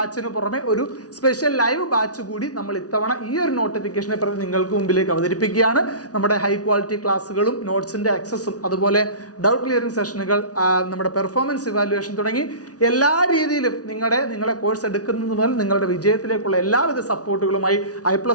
പുറമെ ഒരു സ്പെഷ്യൽ ലൈവ് ബാച്ച് കൂടി നമ്മൾ ഇത്തവണ ഈ ഒരു നോട്ടിഫിക്കേഷനെ പ്രതി നിങ്ങൾക്ക് മുമ്പിലേക്ക് അവതരിപ്പിക്കുകയാണ്. നമ്മുടെ ഹൈ ക്വാളിറ്റി ക്ലാസ്സുകളും നോട്ട്സിൻ്റെ ആക്സസും അതുപോലെ ഡൗട്ട് ക്ലിയറിംഗ് സെഷനുകൾ, നമ്മുടെ പെർഫോമൻസ് ഇവാലുവേഷൻ തുടങ്ങി എല്ലാ രീതിയിലും നിങ്ങളെ കോഴ്സ് എടുക്കുന്നത് മുതൽ നിങ്ങളുടെ വിജയത്തിലേക്കുള്ള എല്ലാവിധ സപ്പോർട്ടുകളുമായി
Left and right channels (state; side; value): late; right; 0.68 ms